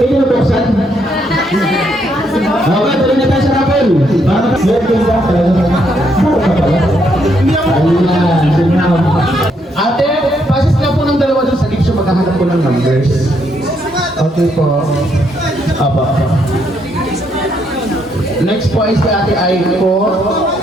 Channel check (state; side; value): normal; both; correlation 0.74